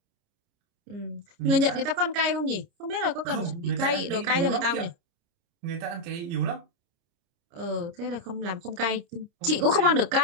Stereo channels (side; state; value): left; late; 29 ms